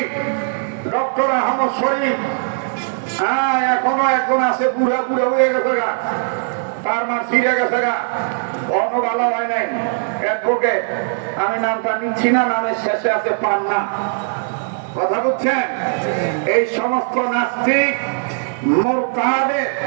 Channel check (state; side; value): silent; left; digital silence